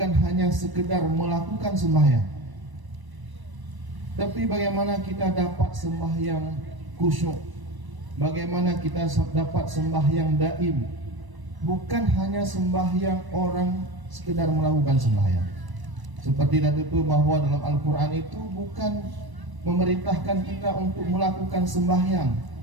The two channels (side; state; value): left; late; 1.0 ms